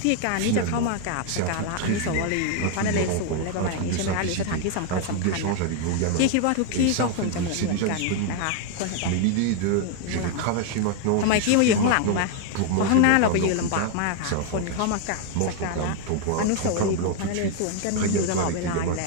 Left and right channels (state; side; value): different; both; correlation 0.01